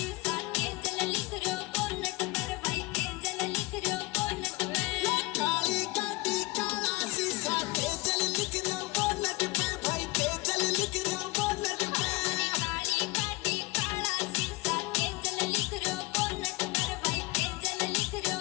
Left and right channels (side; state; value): right; quieter; 21.8 dB